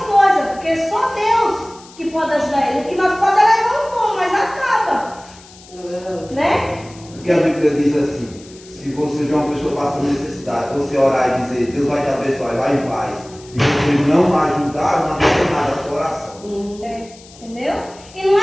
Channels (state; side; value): noise; left; hiss, 22 dB below the sound